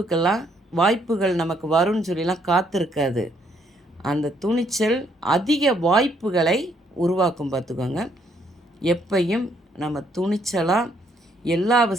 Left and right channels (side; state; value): both; normal; correlation 0.70